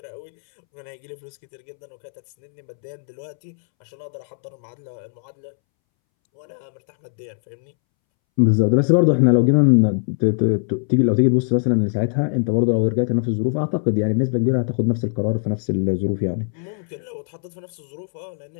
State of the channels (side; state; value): right; silent; 65 dB below the other